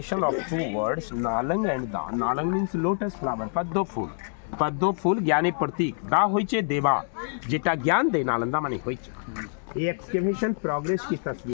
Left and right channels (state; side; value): silent; right; digital silence